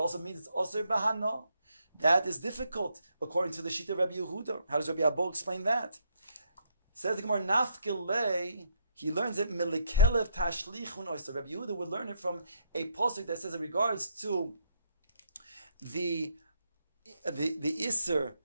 means it's osir bahano? That is difficult according to the Shita of Rabbi Yehuda. How does Rabbi Abba explain that? Says the Gemara nafkilei. He learns it milikelev tashlichun oyster. Rabbi Yehuda would learn it from a pasuk that says in regards to the iser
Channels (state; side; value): inverted; both; correlation -0.73